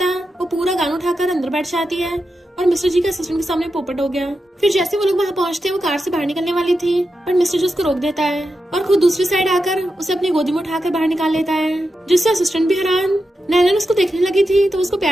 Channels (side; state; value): both; normal; correlation 0.89